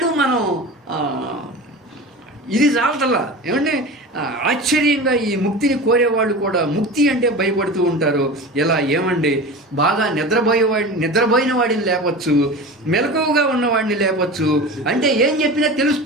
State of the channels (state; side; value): normal; both; correlation 0.32